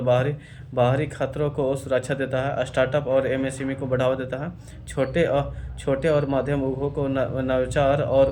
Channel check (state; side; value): identical; both; correlation 1.00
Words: बाहरी खतरों को सुरक्षा देता है। स्टार्टअप और एमएसएमई को बढ़ावा देता है। छोटे और मध्यम उद्योग को नवाचार और